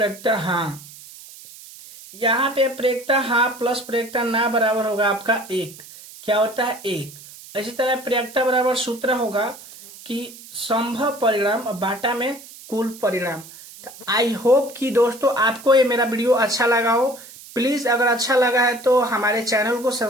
हाँ। यहाँ पे प्रयोक्ता हाँ प्लस प्रयोक्ता ना बराबर होगा आपका 1। क्या होता है, 1। इसी तरह प्रयोक्ता बराबर सूत्र होगा कि संभव परिणाम बाटा में कुल परिणाम। तो आई होप कि दोस्तों आपको ये मेरा वीडियो अच्छा लगा हो। प्लीज अगर अच्छा लगा है तो हमारे चैनल को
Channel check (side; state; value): right; noise; hiss, 18 dB below the sound